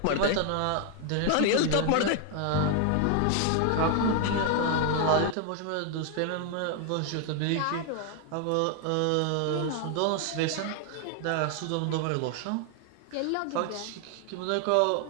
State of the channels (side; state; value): both; different; correlation 0.01